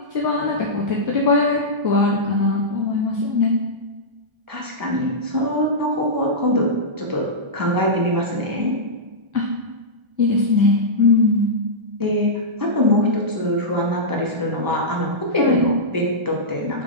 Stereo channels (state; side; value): late; left; 1.3 ms